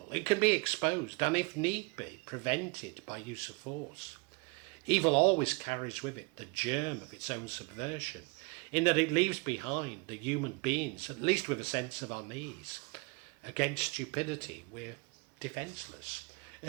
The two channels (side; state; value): left; quieter; 29.4 dB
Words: It can be exposed and, if need be, prevented by use of force. Evil always carries with it the germ of its own subversion, in that it leaves behind the human beings, at least with a sense of unease. Against stupidity, we're defenceless.